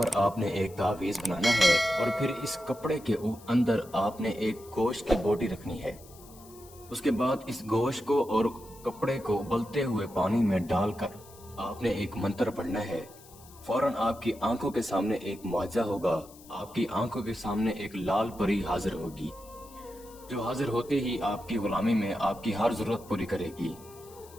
आपने एक तावीज बनाना है और फिर इस कपड़े के अंदर आपने एक गोश्त की बोटी रखनी है। उसके बाद इस गोश्त को और कपड़े को उबलते हुए पानी में डालकर आपने एक मंत्र पढ़ना है। फौरन आपकी आंखों के सामने एक मुआजा होगा। आपकी आंखों के सामने एक लाल परी हाजिर होगी, जो हाजिर होते ही आपकी गुलामी में आपकी हर जरूरत पूरी करेगी।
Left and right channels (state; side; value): noise; left; hiss, 22 dB below the sound